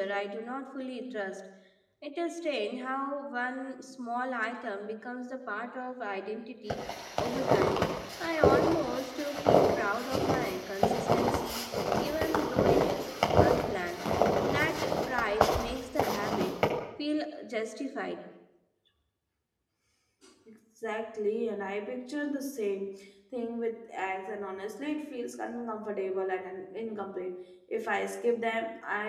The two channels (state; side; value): identical; both; correlation 1.00